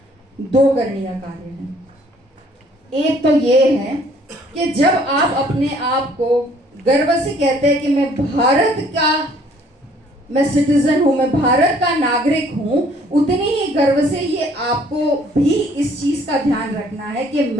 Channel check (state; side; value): normal; both; correlation 0.60